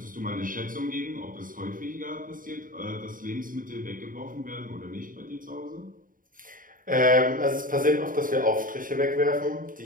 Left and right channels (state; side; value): late; left; 0.40 ms